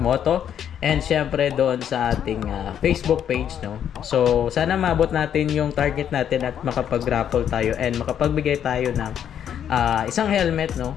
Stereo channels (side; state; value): right; quieter; 9.3 dB